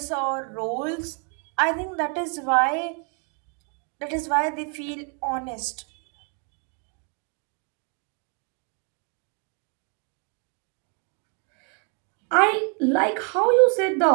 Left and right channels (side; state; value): left; quieter; 38.7 dB